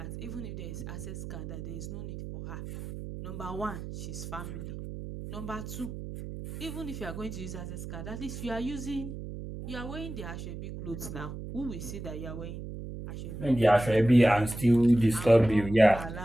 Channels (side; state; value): right; noise; hum, 9 dB below the sound